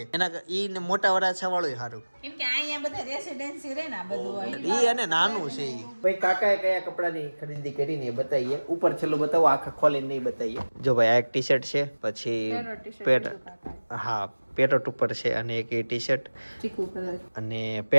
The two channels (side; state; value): both; inverted; correlation -1.00